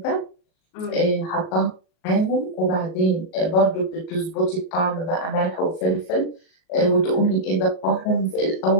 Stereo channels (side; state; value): right; late; 37 ms